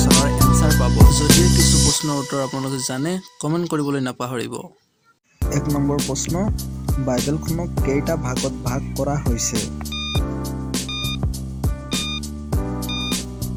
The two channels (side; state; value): both; identical; correlation 1.00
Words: এনচাৰ পাব। যদিও কিছু প্ৰশ্নৰ উত্তৰ আপোনালোকে জানে, কমেণ্ট কৰিবলৈ নাপাহৰিব। ১ নম্বৰ প্ৰশ্ন, বাইবেলখনক কেইটা ভাগত ভাগ কৰা হৈছে?